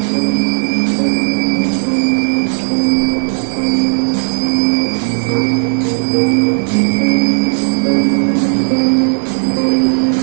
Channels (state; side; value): silent; left; digital silence